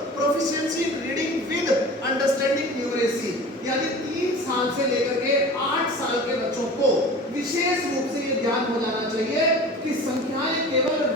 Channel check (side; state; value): both; normal; correlation 0.38